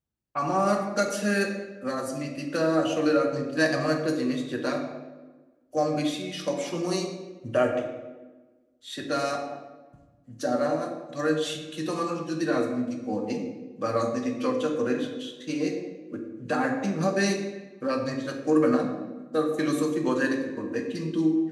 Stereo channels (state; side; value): identical; both; correlation 1.00